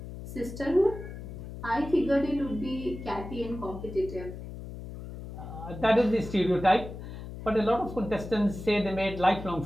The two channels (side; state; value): left; noise; hum, 11 dB below the sound